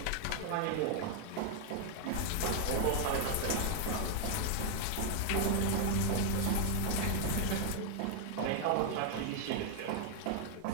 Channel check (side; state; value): both; different; correlation 0.00